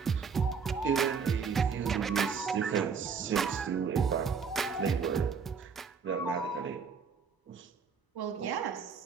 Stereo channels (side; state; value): left; quieter; 5.9 dB